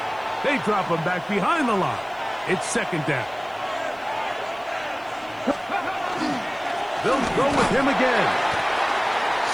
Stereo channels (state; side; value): noise; right; hiss, 29 dB below the sound